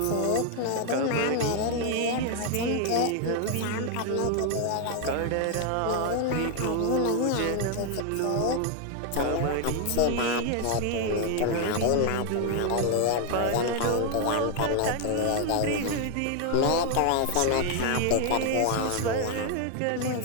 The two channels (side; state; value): both; different; correlation 0.00